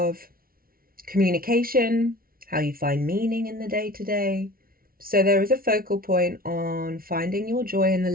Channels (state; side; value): late; left; 0.43 ms